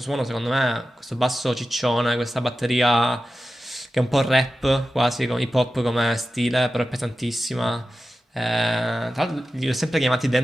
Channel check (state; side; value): normal; both; correlation 0.93